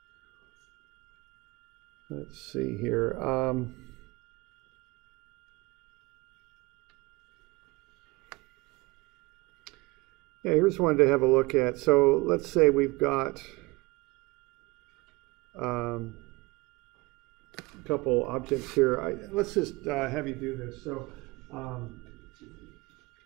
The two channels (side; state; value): left; quieter; 23.9 dB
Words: Let's see here. Yeah, here's one to have a look at. So let's say we've got a couple objects here. Let's just have you do this. So